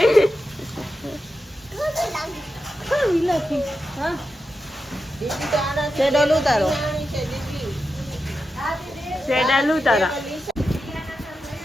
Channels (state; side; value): normal; both; correlation 0.89